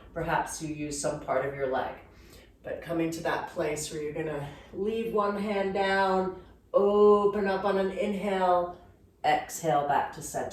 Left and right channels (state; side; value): identical; both; correlation 1.00